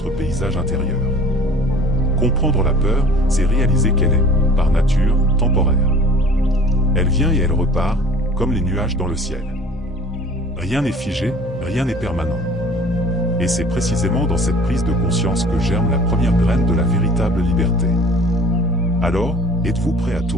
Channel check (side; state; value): both; normal; correlation 0.47